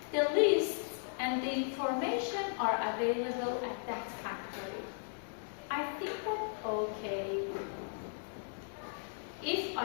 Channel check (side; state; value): right; silent; digital silence